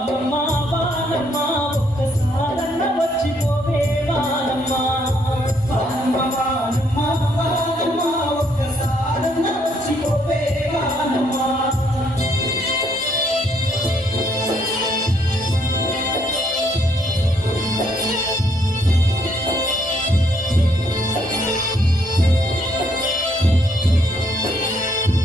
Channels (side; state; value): both; normal; correlation 0.69